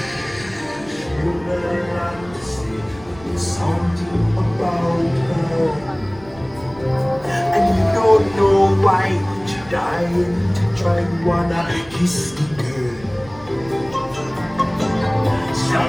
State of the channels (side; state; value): right; noise; rumble, 22 dB below the sound